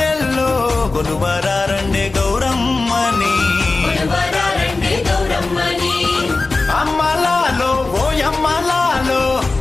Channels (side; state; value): right; quieter; 3.6 dB